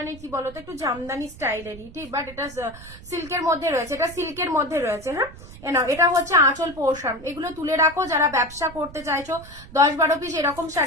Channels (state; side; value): noise; right; rumble, 17 dB below the sound